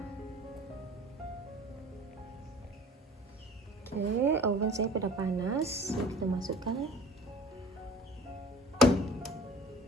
Okey, oven saya dah panas. Kita masukkan.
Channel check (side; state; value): both; normal; correlation 0.45